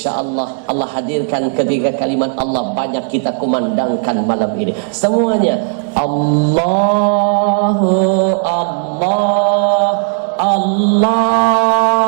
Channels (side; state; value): left; silent; digital silence